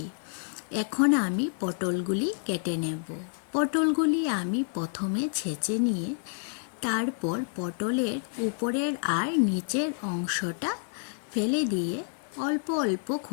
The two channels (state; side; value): silent; right; 59 dB below the other